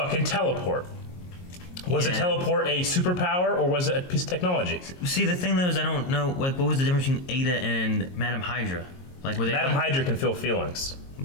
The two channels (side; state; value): right; late; 22 ms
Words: teleport. Was a teleport a superpower or was it a piece of technology? See, the thing though is I don't know, like, what was the difference between Ada and Madam Hydra? Like, were they Madam Hydra can feel feelings.